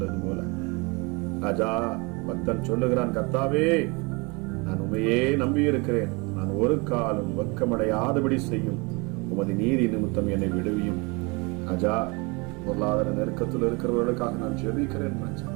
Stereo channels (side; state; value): left; quieter; 28.3 dB